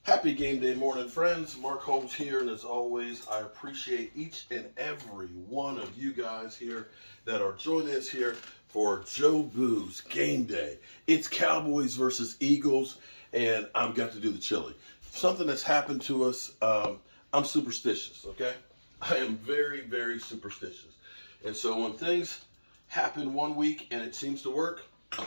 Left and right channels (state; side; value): inverted; both; correlation -1.00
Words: Happy game day morning, friends. Mark Holmes here, and as always, I appreciate each and every one of you guys here that are joining us here for Joe Boo's game day. It's Cowboys versus Eagles, and I've got to do the chili. Something that's happened to us, I'm superstitious, okay? I am very, very superstitious. And so when things happen one week and it seems to work,